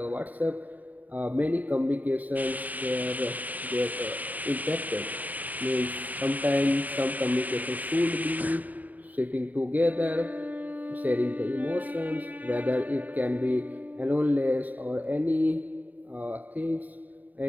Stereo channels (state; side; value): late; left; 0.079 ms